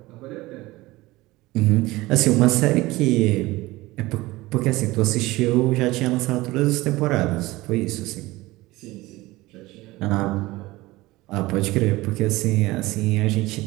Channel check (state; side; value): quieter; left; 19.6 dB